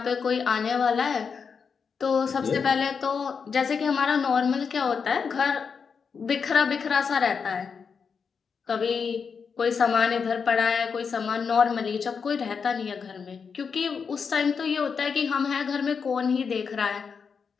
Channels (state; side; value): quieter; right; 5.9 dB